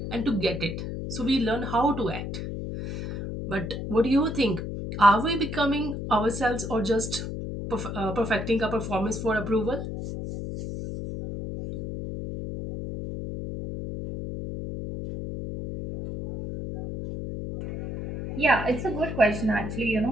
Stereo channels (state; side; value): noise; left; hum, 6 dB below the sound